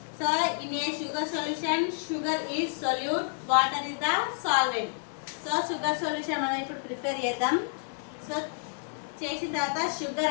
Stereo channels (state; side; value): silent; right; digital silence